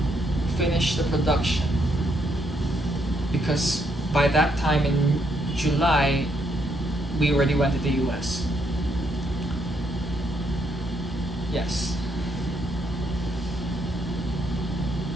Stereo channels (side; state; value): both; normal; correlation 0.75